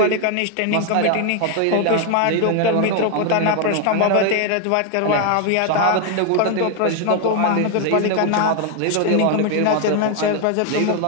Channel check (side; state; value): both; different; correlation 0.01